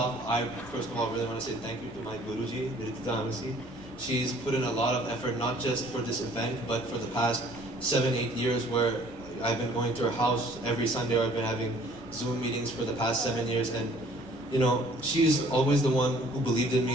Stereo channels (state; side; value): normal; both; correlation 0.56